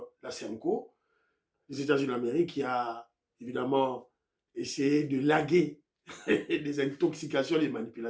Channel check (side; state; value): both; identical; correlation 1.00